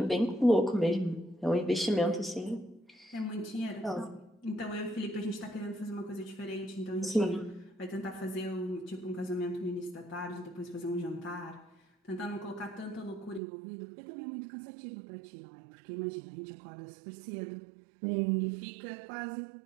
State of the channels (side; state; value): left; drops out; at 13.4 s